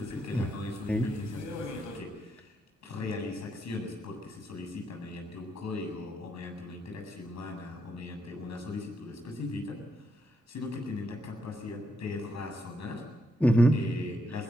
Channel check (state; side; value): normal; both; correlation 0.79